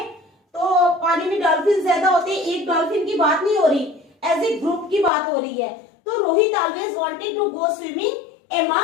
तो पानी में डॉल्फिन ज्यादा होते हैं, एक डॉल्फिन की बात नहीं हो रही, एज ए ग्रुप की बात हो रही है। तो Rohit always wanted to go swimming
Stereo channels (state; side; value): drops out; right; at 5.1 s